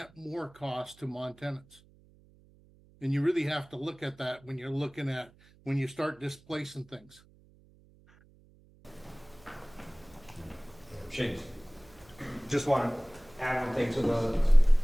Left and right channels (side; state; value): right; noise; hum, 28 dB below the sound